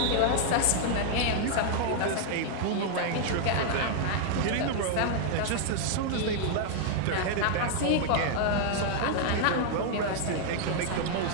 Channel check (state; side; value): different; both; correlation 0.00